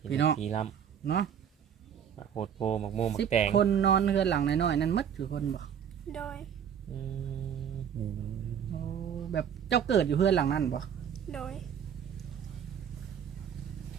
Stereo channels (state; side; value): quieter; left; 8.4 dB